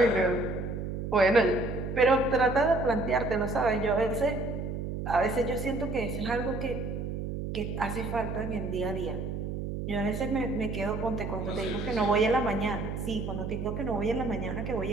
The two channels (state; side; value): noise; right; hum, 4 dB below the sound